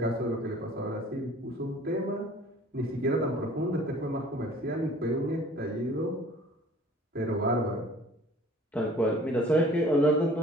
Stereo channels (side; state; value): both; normal; correlation 0.50